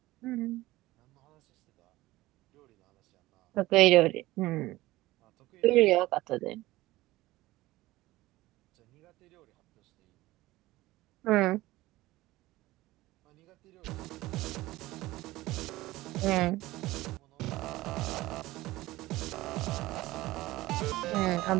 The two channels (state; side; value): quieter; left; 18.0 dB